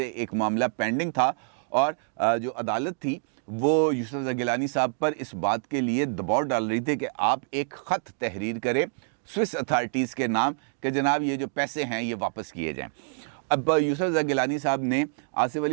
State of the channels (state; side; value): silent; left; digital silence